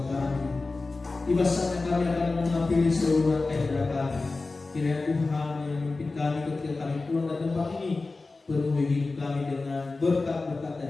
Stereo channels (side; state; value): right; quieter; 3.6 dB